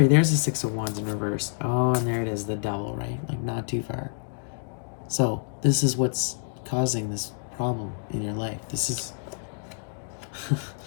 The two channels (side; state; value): right; silent; digital silence